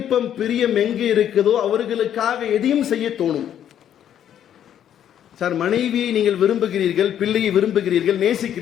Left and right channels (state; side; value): quieter; right; 10.1 dB